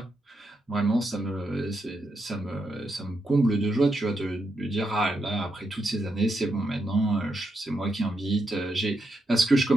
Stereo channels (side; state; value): both; normal; correlation 0.83